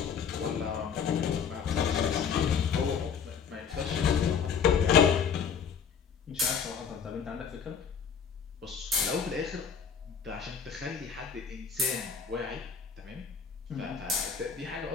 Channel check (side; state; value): right; quieter; 6.8 dB